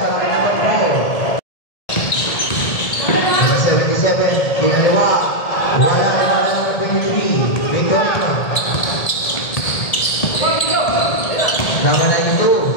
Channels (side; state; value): right; late; 1.7 ms